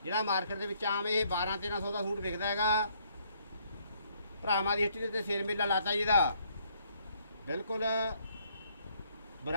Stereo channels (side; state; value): both; inverted; correlation -0.68